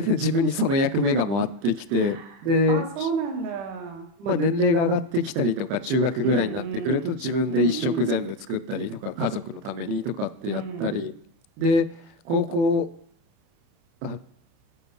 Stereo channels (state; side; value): late; left; 30 ms